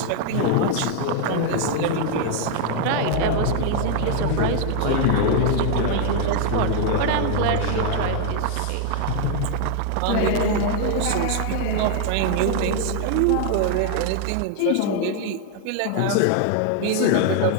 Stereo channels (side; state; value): both; different; correlation 0.00